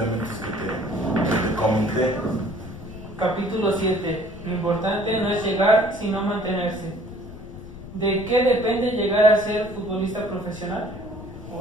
que te comenté. Capítulo 7. Lo importante no es llegar, sino mantenerse. ¿De qué depende llegar a ser futbolista profesional?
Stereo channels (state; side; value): noise; left; rumble, 14 dB below the sound